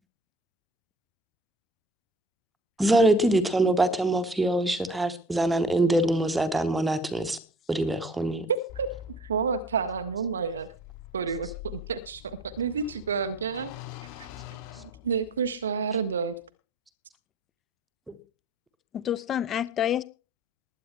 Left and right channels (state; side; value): normal; both; correlation 0.46